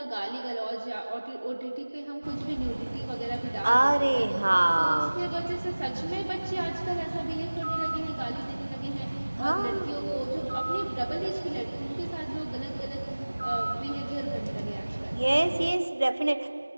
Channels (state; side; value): inverted; both; correlation -1.00